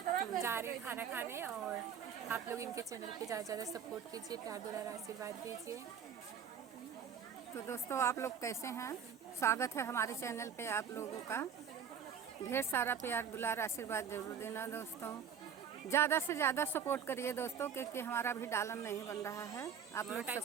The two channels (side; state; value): left; quieter; 7.6 dB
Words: जा रहे हैं खाना खाने और आप लोग इनके चैनल पे ज़्यादा से ज़्यादा सपोर्ट कीजिए, प्यार दुलार आशीर्वाद दीजिए। तो दोस्तों, आप लोग कैसे हैं? स्वागत है हमारे चैनल पे आप लोगों का। ढेर सारा प्यार दुलार आशीर्वाद जरूर देना दोस्तों। ज़्यादा से ज़्यादा सपोर्ट करिए दोस्तों, क्योंकि हमारा भी डालन नहीं बन रहा है। आप लोग